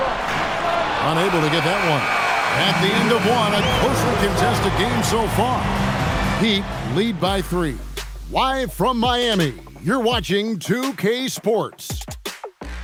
Unable to get that one. At the end of one, a closely contested game so far. Heat lead by 3. Live from Miami, you're watching 2K Sports.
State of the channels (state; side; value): identical; both; correlation 1.00